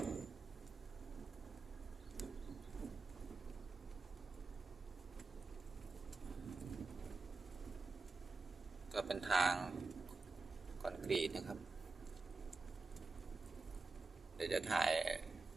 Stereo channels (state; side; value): quieter; left; 3.8 dB